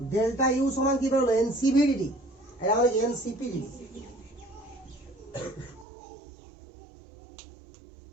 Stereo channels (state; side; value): drops out; left; at 5.9 s